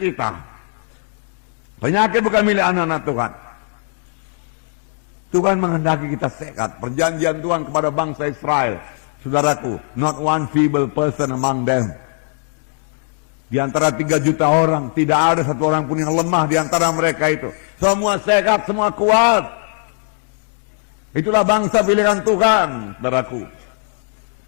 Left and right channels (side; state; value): right; silent; digital silence